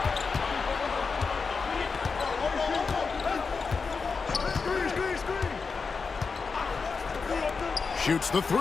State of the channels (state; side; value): quieter; right; 4.9 dB